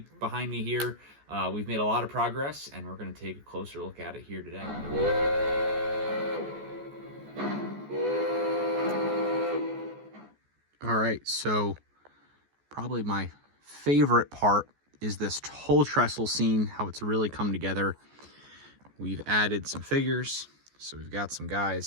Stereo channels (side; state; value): left; late; 14 ms